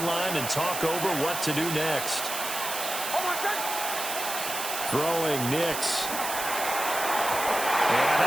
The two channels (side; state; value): right; noise; hiss, 5 dB below the sound